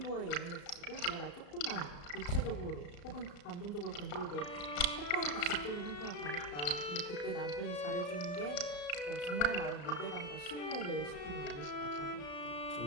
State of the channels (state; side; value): late; right; 34 ms